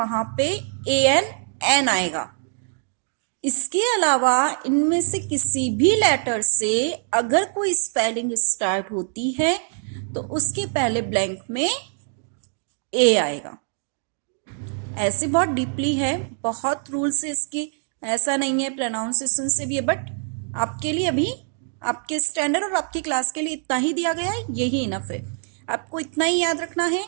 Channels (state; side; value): silent; left; 56 dB below the other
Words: पे ए एन एन आएगा। इसके अलावा इनमें से किसी भी लेटर से अगर कोई स्पेलिंग स्टार्ट होती है तो उसके पहले ब्लैंक में ए आएगा। ऐसे बहुत डीपली है, बहुत रूल्स है इसके, ऐसा नहीं है, प्रोनाउंसिएशन से भी है, बट आपके लिए अभी आपके स्टैंडर्ड और आपकी क्लास के लिए इतना ही दिया गया है, यही इनफ है। आपको इतना ही याद रखना है